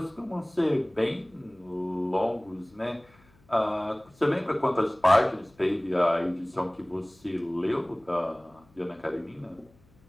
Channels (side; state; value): left; noise; hum, 30 dB below the sound